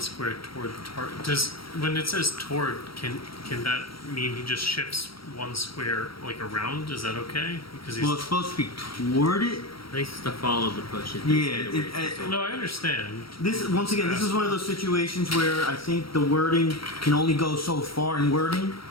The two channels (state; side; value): late; right; 0.75 ms